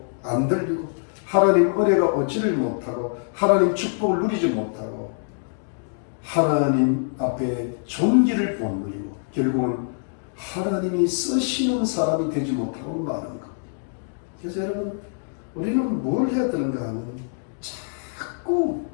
안 들리고, 하나님 은혜가 얻지를 못하고, 하나님 축복을 누리지 못하고, 하나님 앞에 존귀를 못 누리고, 결국은 하나님이 쓰시는 사람이 되지 못하고 마는 것. 그래서 여러분, 우리는 뭘 해야 되는가 하면 자꾸,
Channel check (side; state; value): right; silent; digital silence